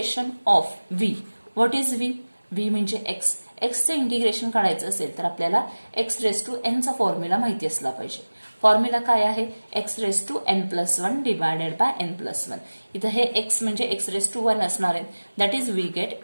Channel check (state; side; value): inverted; both; correlation -1.00